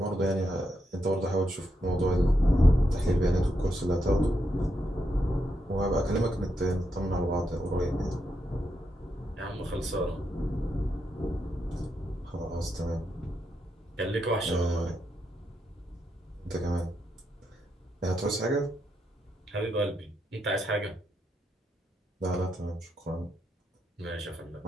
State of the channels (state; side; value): normal; both; correlation 0.82